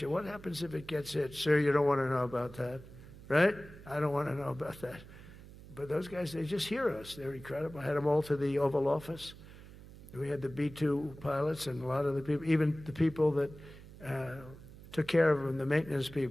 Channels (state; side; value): noise; right; hum, 17 dB below the sound